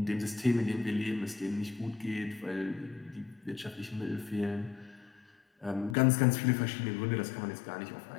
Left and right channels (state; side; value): drops out; right; at 6.0 s